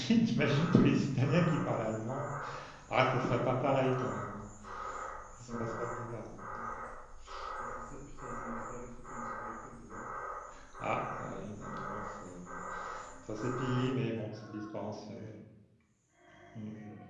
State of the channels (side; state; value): both; identical; correlation 1.00